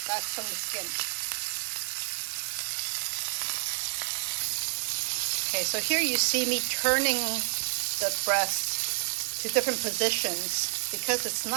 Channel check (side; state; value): left; silent; 58 dB below the other